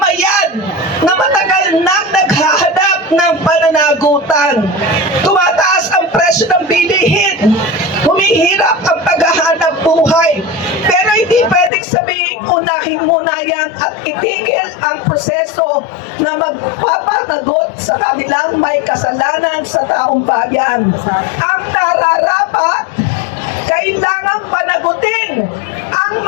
na matagal nang naghahanap ng pananagutan. Tumataas ang presyo ng bilihin. Humihirap ang paghahanap buhay. Pero hindi pwedeng sabihin unahin muna yan at itigil ang proseso na magpapanagot sa kanilang may kasalanan sa taong bayan. Ang nararapat, kailangang panagutin ang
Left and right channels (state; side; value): drops out; right; at 11.7 s